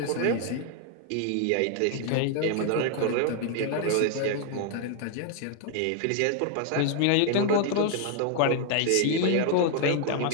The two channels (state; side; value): different; both; correlation 0.01